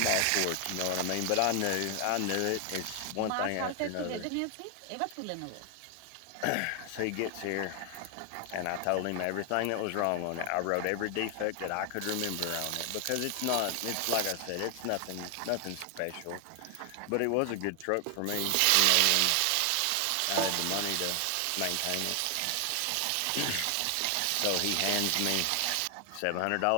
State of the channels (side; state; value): both; different; correlation 0.00